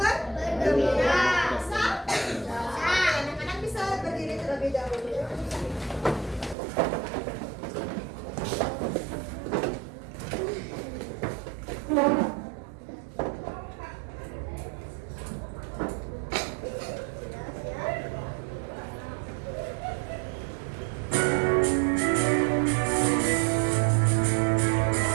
bergembira. Bisa? Anak-anak bisa berdiri terlebih dahulu.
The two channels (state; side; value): drops out; left; at 6.6 s